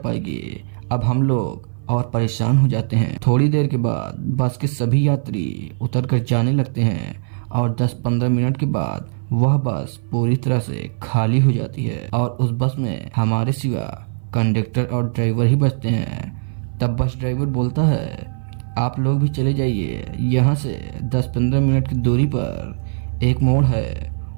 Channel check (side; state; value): left; silent; 56 dB below the other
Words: अब हम लोग और परेशान हो जाते हैं। थोड़ी देर के बाद बस के सभी यात्री उतर कर जाने लगते हैं और 10-15 मिनट के बाद वह बस पूरी तरह से खाली हो जाती है और उस बस में हमारे सिवा कंडक्टर और ड्राइवर ही बचते हैं। तब बस ड्राइवर बोलता है, आप लोग भी चले जाइए, यहाँ से 10-15 मिनट की दूरी पर एक मोड़ है,